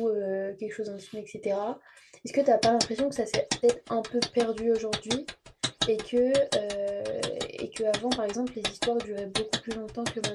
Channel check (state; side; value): identical; both; correlation 1.00